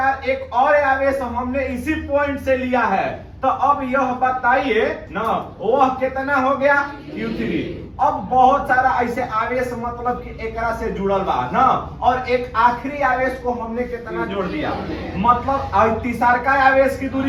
एक और आवेश हमने इसी पॉइंट से लिया है, तो अब यह बताइए ना, वह कितना हो गया Q3। अब बहुत सारा ऐसे आवेश मतलब कि एकरा से जुड़ल बा ना, और एक आखिरी आवेश को हमने कितना जोड़ दिया, मतलब तीसरका आवेश की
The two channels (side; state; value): both; identical; correlation 1.00